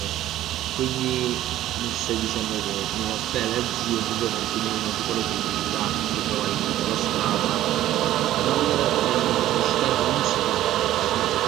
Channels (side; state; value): left; quieter; 13.6 dB